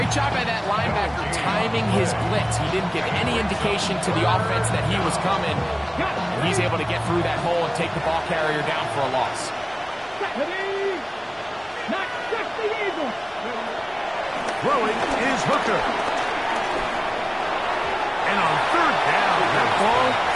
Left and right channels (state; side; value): identical; both; correlation 1.00